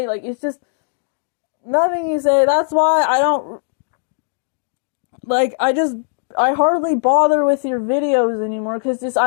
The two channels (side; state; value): right; silent; digital silence